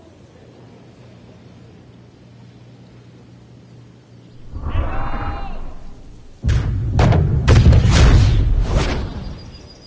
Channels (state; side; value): identical; both; correlation 1.00